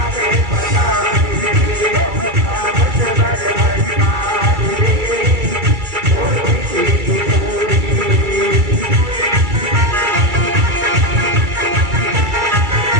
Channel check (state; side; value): late; left; 2.3 ms